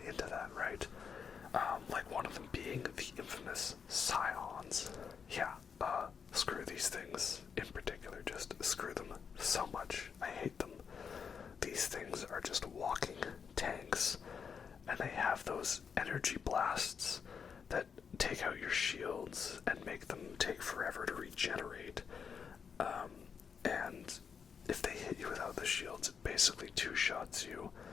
into that, right? Like one of them being the infamous Scions. Yeah, screw these things in particular, just screw them so much. I hate them. These things are just walking tanks, and they have those energy blasts that take out your shields and make them take forever to regenerate. And if they hit you without the shields, it basically two-shots you.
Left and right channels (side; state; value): right; quieter; 6.5 dB